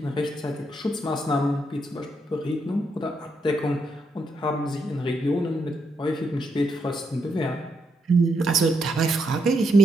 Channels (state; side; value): normal; both; correlation 0.79